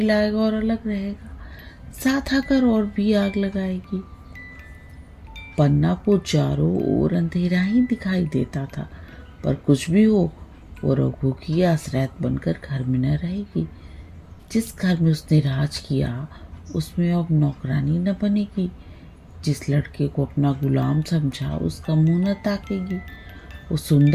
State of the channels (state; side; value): identical; both; correlation 1.00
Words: लाएगा और अलग रहेगा, साथ आकर और भी आग लगाएगी। पन्ना को चारों ओर अंधेरा ही दिखाई देता था, पर कुछ भी हो वो रघु की आश्रयत बनकर घर में न रहेगी। जिस घर में उसने राज किया उसमें अब नौकरानी न बनेगी। जिस लड़के को अपना गुलाम समझा उसका मुंह न ताकेगी। वो